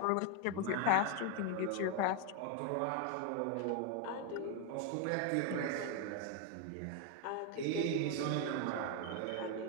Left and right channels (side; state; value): both; different; correlation 0.01